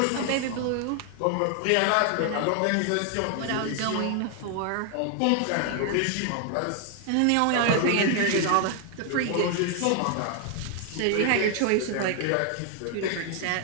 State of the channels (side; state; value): both; different; correlation 0.00